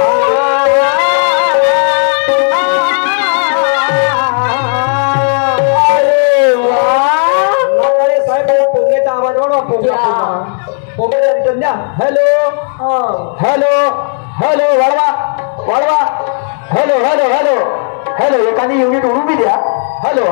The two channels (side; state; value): right; silent; 59 dB below the other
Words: hello hello hello वाढवा वाढवा hello hello hello hello एखादी युनिट उडू बी द्या हॅलो